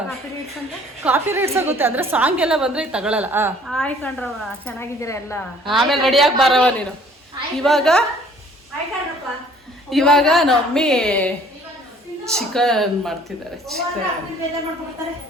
ಕಾಪಿ ರೈಟ್ಸ್ ಆಗುತ್ತೆ ಅಂದ್ರೆ ಸಾಂಗ್ ಎಲ್ಲ ಬಂದ್ರೆ ತಗೊಳಲ್ಲ. ಹಾಯ್ ಕಣ್ರವ, ಚೆನ್ನಾಗಿದ್ದೀರಾ ಎಲ್ಲ? ಆಮೇಲೆ ರೆಡಿಯಾಗಿ ಬರವ ನೀನು. ಇವಾಗ ನಮ್ಮಿ ಚಿಕನ್ ಮಾಡ್ತಿದ್ದಾರೆ.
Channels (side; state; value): both; normal; correlation 0.56